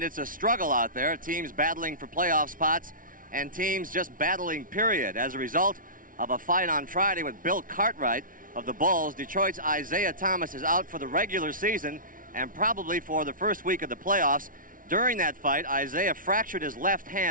it's a struggle out there. Teams battling for playoff spots and teams just battling, period. As a result of a fight on Friday with Bill Cartwright of the Bulls, Detroit's Isaiah Thomas is out for the regular season and probably for the first week of the playoffs. During that fight, Isaiah fractured his left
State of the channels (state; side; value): late; left; 0.39 ms